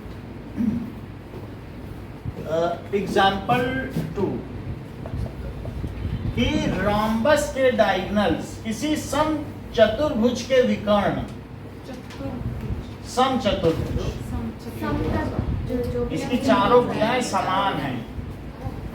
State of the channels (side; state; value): both; identical; correlation 1.00